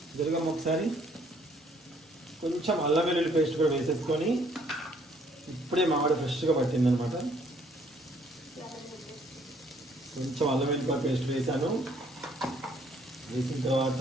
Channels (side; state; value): both; normal; correlation 0.64